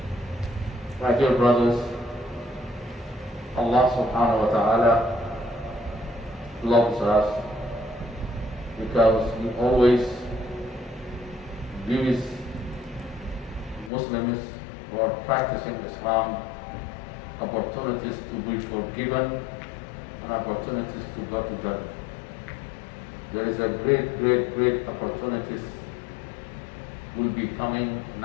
My dear brothers, Allah subhanahu wa ta'ala loves us because He always gives Muslims who are practicing Islam opportunities to be forgiven and opportunities to go to Jannah. There is a great opportunities will be coming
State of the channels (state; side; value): drops out; right; at 13.9 s